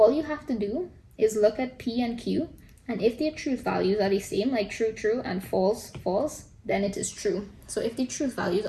you have to do is look at P and Q, and if their truth values are the same, like true, true, and false, false, then it is true. So if the truth values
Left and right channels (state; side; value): identical; both; correlation 1.00